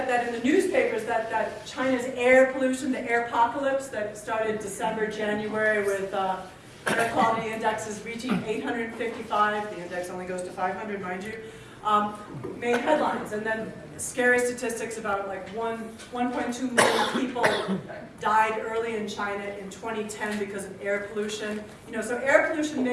in the newspapers that China's air pollution, the air apocalypse that started December, January with air quality indexes reaching 855. The index only goes to 500, mind you. Made headlines, and then scary statistics about like 1.2 million people died early in China in 2010 because of air pollution. So air pollution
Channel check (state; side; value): identical; both; correlation 1.00